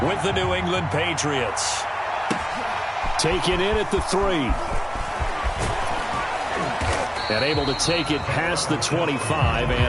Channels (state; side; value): identical; both; correlation 1.00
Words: with the New England Patriots. Taken in at the 3. And able to take it past the 25